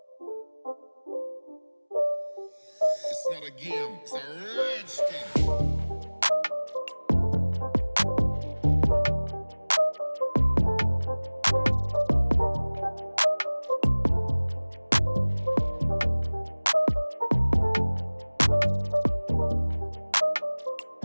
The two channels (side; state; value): both; inverted; correlation -1.00